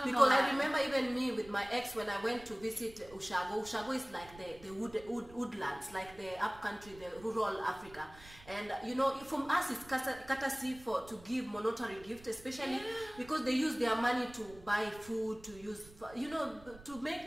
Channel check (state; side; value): noise; right; rumble, 21 dB below the sound